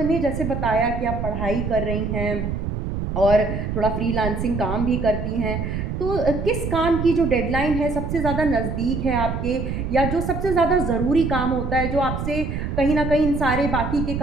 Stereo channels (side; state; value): right; noise; rumble, 3 dB below the sound